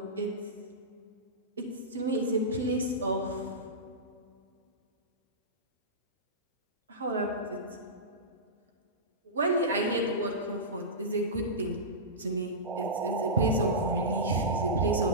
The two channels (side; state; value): both; normal; correlation -0.17